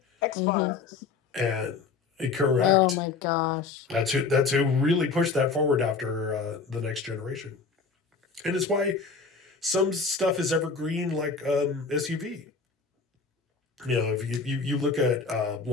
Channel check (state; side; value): quieter; right; 4.7 dB